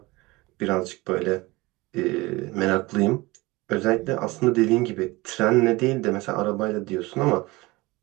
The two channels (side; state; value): left; quieter; 22.1 dB